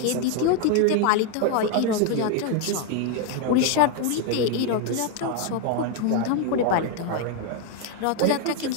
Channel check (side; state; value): both; different; correlation 0.01